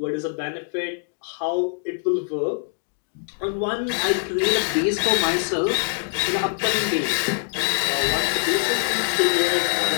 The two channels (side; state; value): right; silent; 63 dB below the other